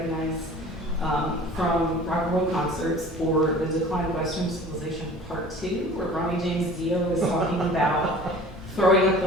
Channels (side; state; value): both; normal; correlation 0.44